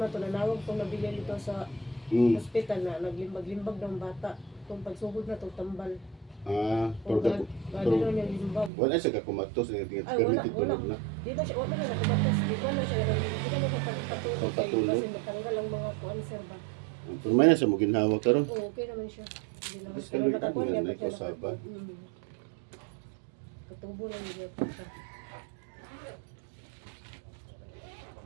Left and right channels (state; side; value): drops out; left; at 8.7 s